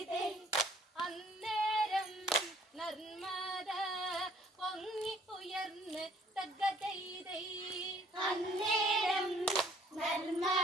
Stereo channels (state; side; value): normal; both; correlation 0.59